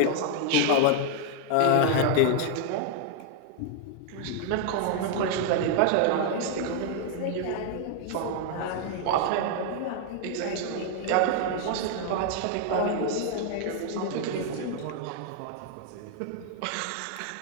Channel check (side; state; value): both; different; correlation 0.00